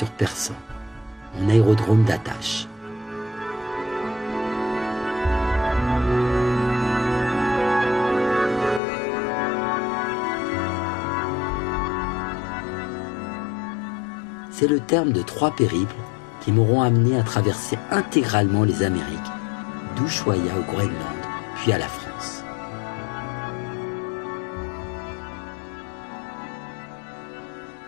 Persan, mon aérodrome d'attache. C'est le terme de 3 périples qui m'auront amené à traverser intégralement les Amériques, d'Ushuaïa au Groenland, puis à la France.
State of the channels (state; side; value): drops out; right; at 8.8 s